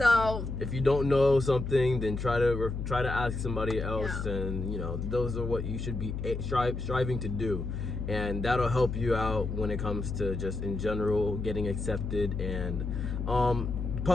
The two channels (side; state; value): left; noise; hum, 4 dB below the sound